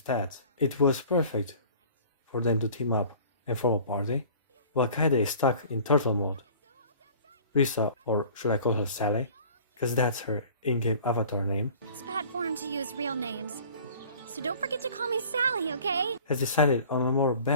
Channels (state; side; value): inverted; both; correlation -0.47